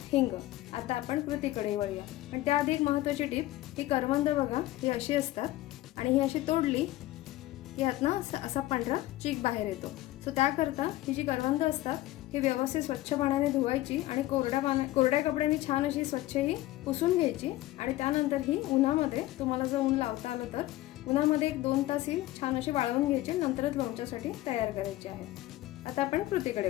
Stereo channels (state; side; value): quieter; right; 16.5 dB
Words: हिंग. आता आपण कृतीकडे वळूया. पण त्याआधी एक महत्त्वाची टीप, ही करवंद बघा ही अशी असतात आणि ही अशी तोडली की ह्यातनं असा पांढरा चीक बाहेर येतो. सो त्याकरता ही जी करवंद असतात ही व्यवस्थित स्वच्छ पाण्याने धुवायची आणि कोरड्या कपड्याने छान अशी स्वच्छ ही पुसून घ्यायची आणि त्यानंतर ही उन्हामध्ये, तुम्हाला जर ऊन लावता आलं तर उन्हामध्ये 1-2 तास ही छान अशी वाळवून घ्यायची, नंतरच लोणच्यासाठी तयार करायची आहे. आता आपण कृतीकडे